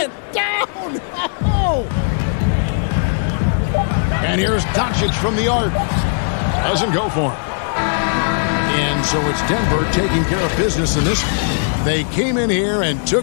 Down! Oh. And here's Doncic from the arc. Doesn't go for him. And so it's Denver taking care of business in this. They came in here and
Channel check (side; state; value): right; silent; 63 dB below the other